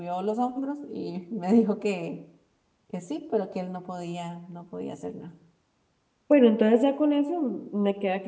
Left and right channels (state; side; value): identical; both; correlation 1.00